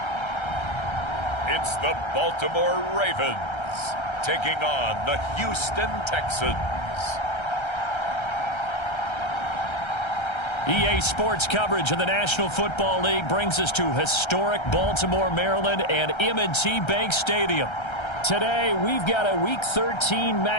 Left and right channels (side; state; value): right; late; 1.3 ms